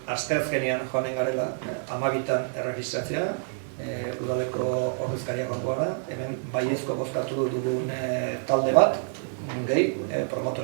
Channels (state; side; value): silent; left; digital silence